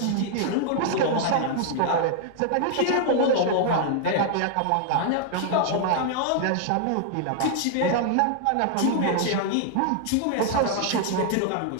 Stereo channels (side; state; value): both; different; correlation 0.00